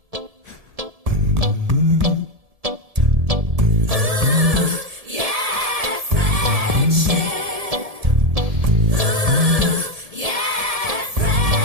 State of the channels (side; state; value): left; late; 1.7 ms